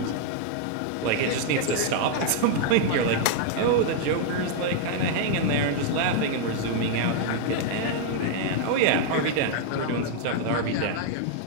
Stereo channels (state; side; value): different; both; correlation 0.00